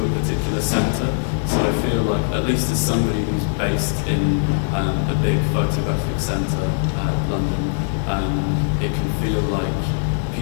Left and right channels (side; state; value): right; silent; digital silence